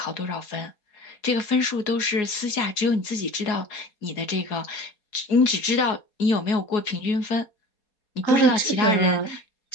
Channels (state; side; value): late; right; 4.8 ms